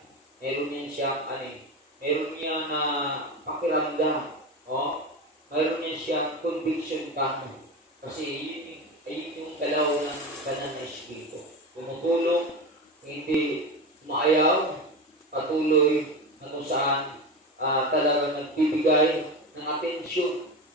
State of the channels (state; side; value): normal; both; correlation 0.23